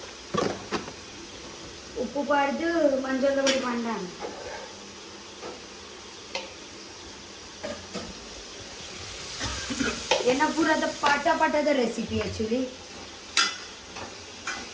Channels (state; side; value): identical; both; correlation 1.00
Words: ಉಪ್ಪು ಪಾಡ್ದು ಮಂಜಲ್ದ ಪೊಡಿ ಪಾಂಡ ಏನ ಪೂರದ ಪಾಠದ recipe actually